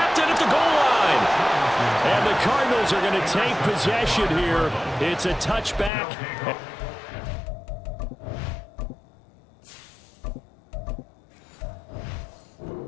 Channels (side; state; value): right; drops out; at 5.9 s